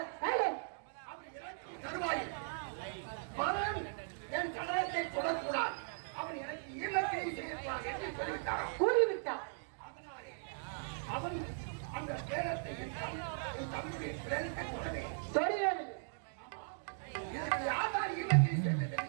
அவர் இறக்கும் தருவாயில் மகன் என் சடலத்தை தொடக்கூடாது. அவன் எனக்கு ஈமக்கிரை செய்யக்கூடாது என்று சொல்லிவிட்டாராம். கூறிவிட்டார். அதனாலே அவன் அந்த பேரத்தை என் தம்முடைய பிரேரத்தை தொடவே தொழில் இதற்கு யாரால் ஈமக்கிரை செய்வது என்று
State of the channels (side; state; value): left; silent; digital silence